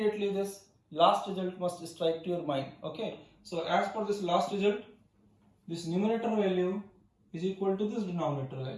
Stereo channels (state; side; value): identical; both; correlation 1.00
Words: this last result must strike to your mind. Okay, so as per this last result, this numerator value is equal to this denominator